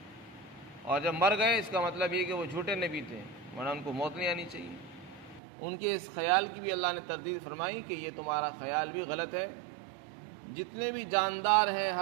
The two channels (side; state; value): left; drops out; at 5.4 s